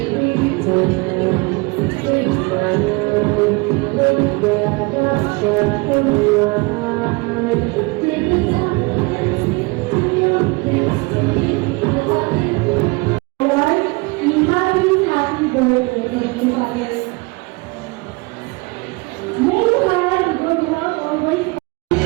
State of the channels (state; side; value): quieter; left; 26.6 dB